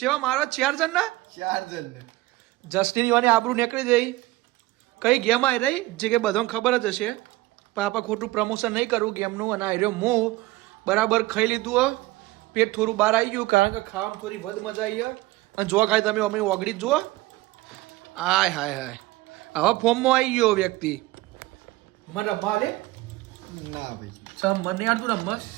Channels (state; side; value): quieter; left; 19.2 dB